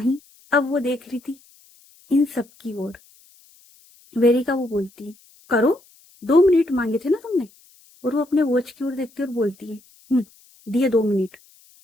अब वो देख रही थी इन सब की ओर। वेरिका वो बोलती है, करो, 2 मिनट मांगे थे ना तुमने। और वो अपने वॉच की ओर देखती है और बोलती है, दिए 2 मिनट।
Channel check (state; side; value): noise; left; hiss, 29 dB below the sound